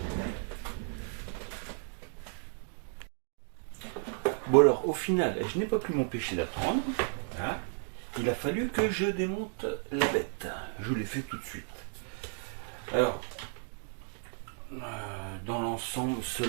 Bon alors au final je n'ai pas pu m'empêcher d'attendre. Hein. Il a fallu que je démonte la bête. Je l'ai fait tout de suite. Alors dans l'ensemble,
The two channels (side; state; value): left; silent; 56 dB below the other